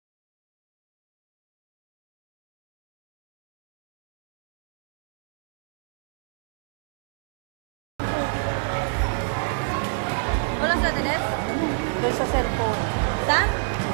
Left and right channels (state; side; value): silent; left; digital silence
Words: Walang sa dinis? Doon sa cellphone. Saan?